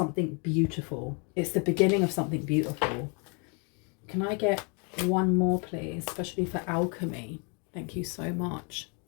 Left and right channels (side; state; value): right; quieter; 35.3 dB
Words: beautiful. It's the beginning of something beautiful. Can I get one more, please? Especially for alchemy. Thank you so much.